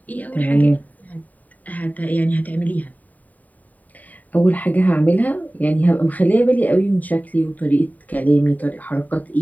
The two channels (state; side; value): late; right; 0.076 ms